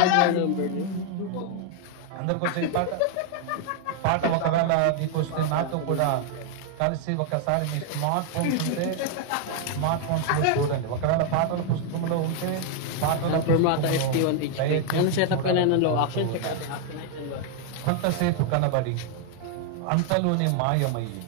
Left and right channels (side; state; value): both; different; correlation 0.00